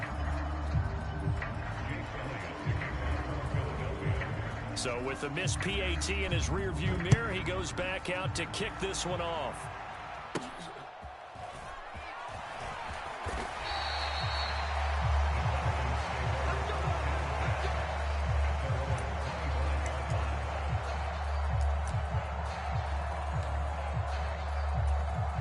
So with the missed PAT in his rearview mirror, he goes back out to kick this one off.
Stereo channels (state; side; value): identical; both; correlation 1.00